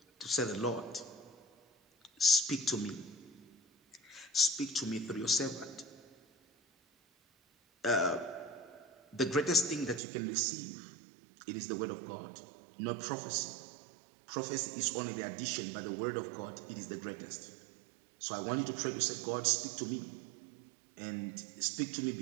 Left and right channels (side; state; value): left; drops out; at 10.0 s